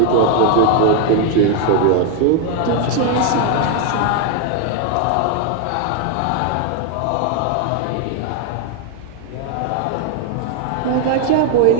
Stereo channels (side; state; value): both; different; correlation 0.01